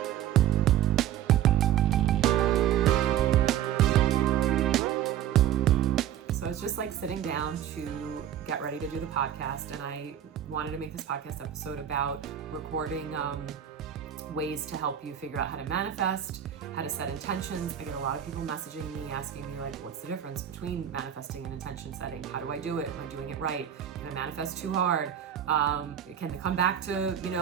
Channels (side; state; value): left; quieter; 10.5 dB